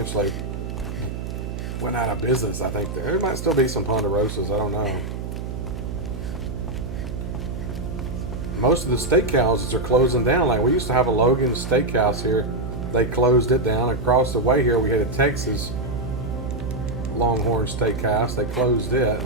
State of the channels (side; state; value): right; noise; hum, 6 dB below the sound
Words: went out of business, I think. There might still be some Ponderosas, I don't know. Most of the steakhouses are closing down. Like, we used to have a Logan's Steakhouse here. They closed it down. Across the way here, we had a Texas Longhorn Steakhouse. They closed it.